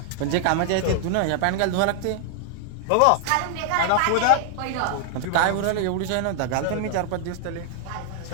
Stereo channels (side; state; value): both; different; correlation 0.00